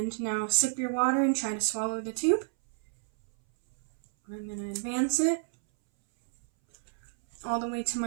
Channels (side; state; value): left; silent; 58 dB below the other